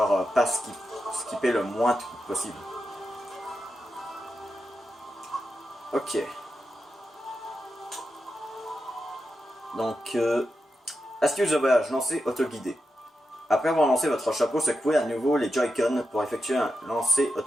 pas skipper le moins de trucs possible. Ok. Donc, astuce de voyage, lancer autoguidé. Après avoir lancé votre chapeau, secouez à nouveau les Joy-Con pour effectuer un lancer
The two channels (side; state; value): both; normal; correlation 0.88